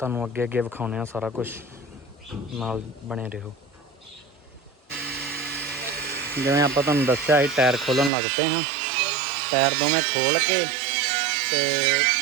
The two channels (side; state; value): left; drops out; at 8.1 s